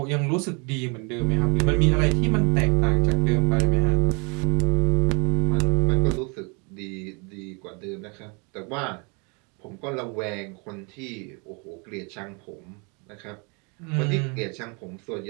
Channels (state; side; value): quieter; left; 32.9 dB